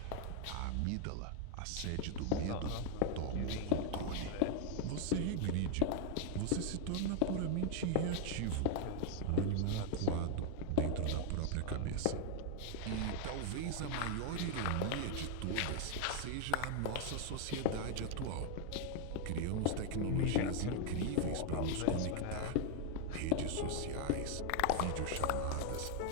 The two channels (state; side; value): different; both; correlation 0.00